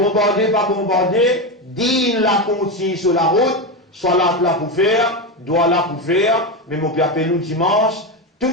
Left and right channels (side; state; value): both; normal; correlation 0.14